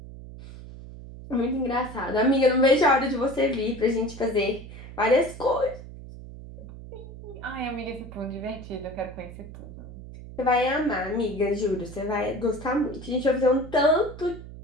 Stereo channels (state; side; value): noise; right; hum, 14 dB below the sound